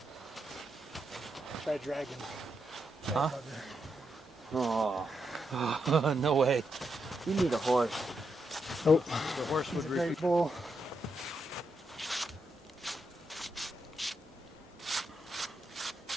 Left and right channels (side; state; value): both; normal; correlation 0.82